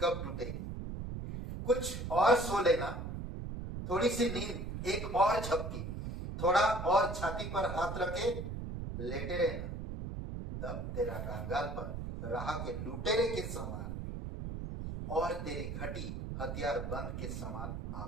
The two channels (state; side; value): noise; right; rumble, 5 dB below the sound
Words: टूटेगी। कुछ और सो लेना, थोड़ी सी नींद, एक और झपकी, थोड़ा और छाती पर हाथ रखे लेटे रहना, तब तेरा कंगालपन राह के लुटेरे के समान और तेरी घटी हथियार बंद के समान आ